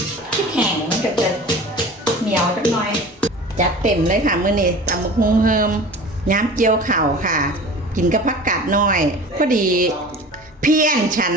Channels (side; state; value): both; normal; correlation 0.39